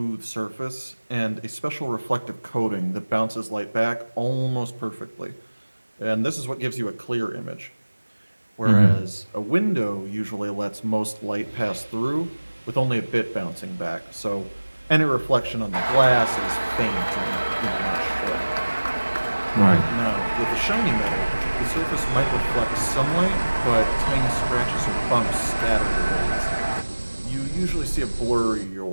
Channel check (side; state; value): both; inverted; correlation -1.00